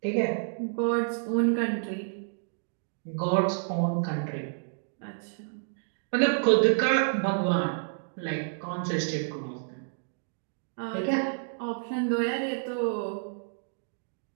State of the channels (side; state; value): left; silent; digital silence